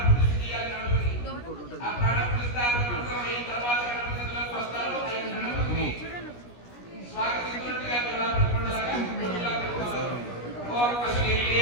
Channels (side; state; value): right; late; 17 ms